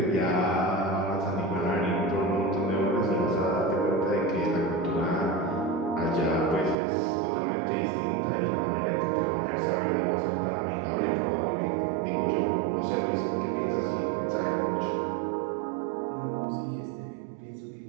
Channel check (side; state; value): left; drops out; at 6.8 s